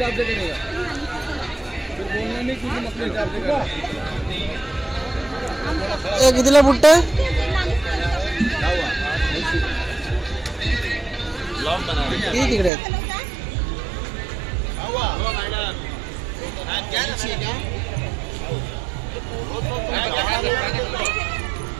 से करेगा, फिर बोलना नहीं क्योंकि अपने हिसाब से कर कितीला बुट्ट? किती तिकडे आहेत?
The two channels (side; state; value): left; drops out; at 12.7 s